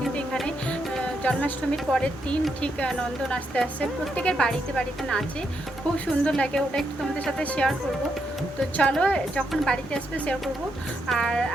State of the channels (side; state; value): both; normal; correlation 0.80